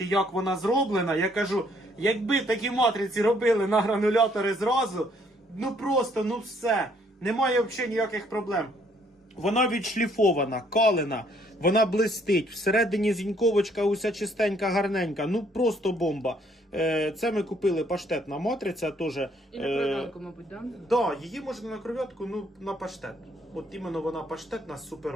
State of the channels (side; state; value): both; normal; correlation 0.66